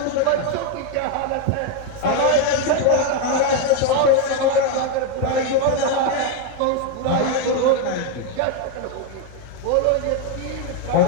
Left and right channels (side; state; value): both; different; correlation 0.01